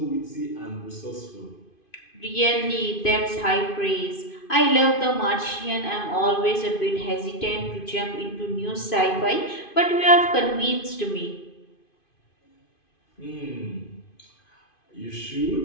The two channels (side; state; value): right; late; 2.5 ms